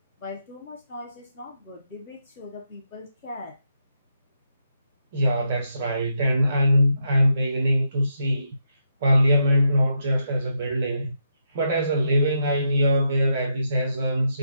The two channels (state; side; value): inverted; both; correlation -0.81